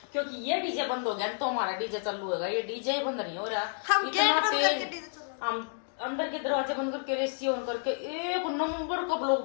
क्योंकि ये डीजे बंद हो गया तो हमारा डीजे चालू होगा, ये डीजे ही बंद नहीं हो रहा। इतना तेज हम अंदर के दरवाजे बंद करके रेसी ऑन करके एक नंबर का ब्लॉग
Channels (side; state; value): right; silent; digital silence